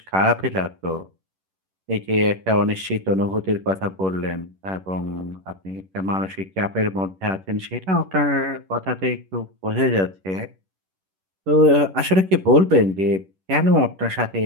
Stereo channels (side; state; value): left; late; 11 ms